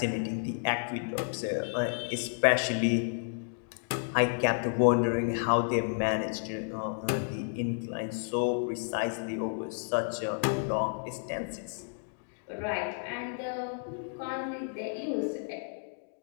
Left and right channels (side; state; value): right; silent; digital silence